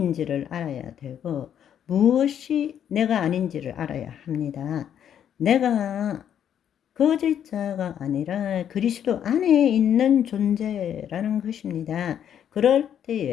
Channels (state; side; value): quieter; right; 9.4 dB